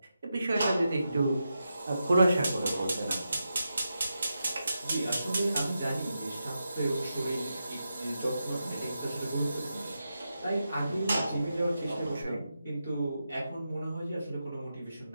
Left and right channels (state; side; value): inverted; both; correlation -0.88